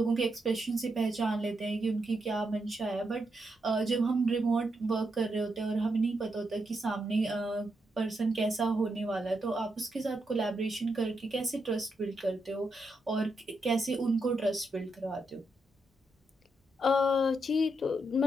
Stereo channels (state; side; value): normal; both; correlation 0.82